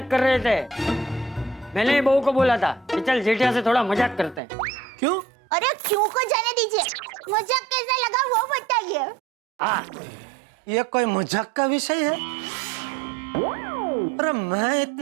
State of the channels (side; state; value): left; drops out; at 4.4 s